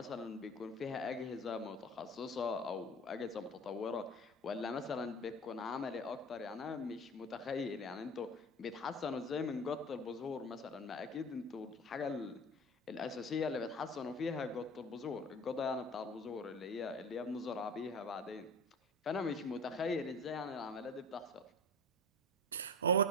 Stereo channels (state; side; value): normal; both; correlation 0.36